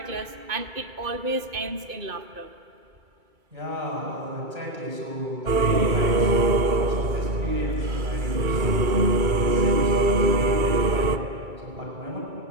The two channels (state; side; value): late; left; 2.3 ms